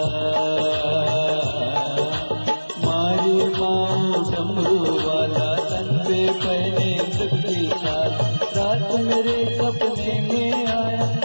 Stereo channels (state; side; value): inverted; both; correlation -1.00